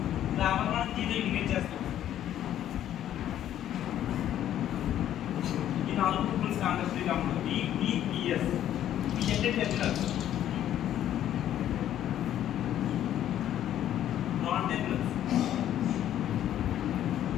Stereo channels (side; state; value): right; quieter; 11.4 dB